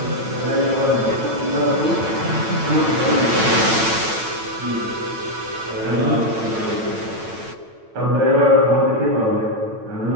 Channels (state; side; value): late; left; 9.0 ms